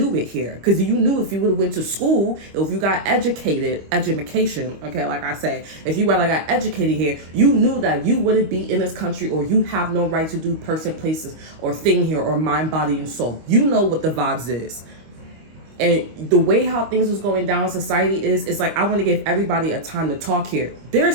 it here. Because you knew if you would have went to school, if you got education, okay, like I say, if you got educated here, you knew that you wouldn't be in this country, or you have no right to do person, places, or thing here, or mind, body, and soul. You know what the vibes is. And the way how things was going down in society it's like, I want to give everybody a time to talk here. There are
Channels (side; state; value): left; late; 25 ms